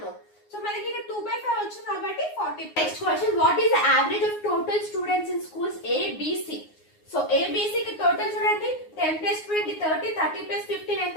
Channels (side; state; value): right; late; 9.6 ms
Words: సో మనకి ఇక్కడ 2/5 వచ్చింది కాబట్టి 40. Next question, what is the average of total students in schools A B C? So A B C కి టోటల్ చూడండి, 10 plus 20 30, 30 plus 15 ఎంత?